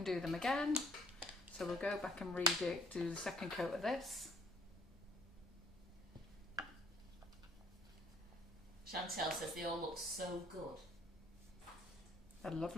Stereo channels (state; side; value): normal; both; correlation 0.60